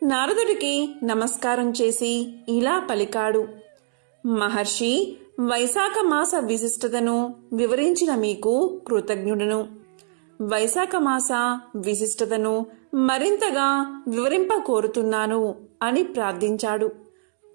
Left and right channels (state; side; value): silent; left; digital silence